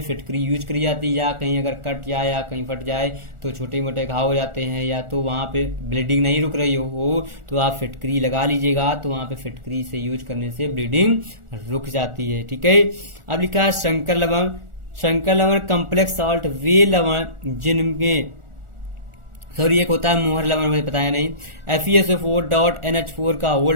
फिटकरी यूज करी जाती है, या कहीं अगर कट जाए या कहीं फट जाए तो छोटे मोटे घाव हो जाते हैं, या तो वहां पे ब्लीडिंग नहीं रुक रही हो तो आप फिटकरी लगा लीजिएगा, तो वहां पे फिटकरी से यूज करने से ब्लीडिंग रुक जाती है। ठीक है। अब लिखा है शंकर लवण, शंकर लवण कम्प्लेक्स सॉल्ट वे लवण जिनमें एक होता है मोहर लवण, मुझे बताया नहीं, FeSO4 डॉट NH4 का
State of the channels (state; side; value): late; left; 1.4 ms